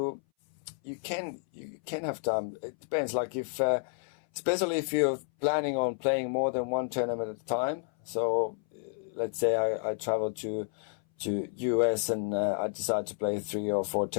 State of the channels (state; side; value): silent; right; 57 dB below the other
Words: can have time. It depends. Like if, especially if you're planning on playing more than one tournament at a time. So let's say I travel to US and I decide to play 3 or 4